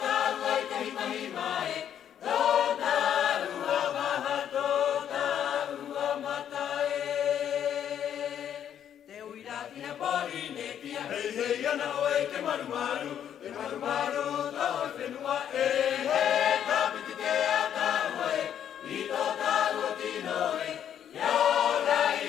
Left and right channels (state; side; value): quieter; right; 9.6 dB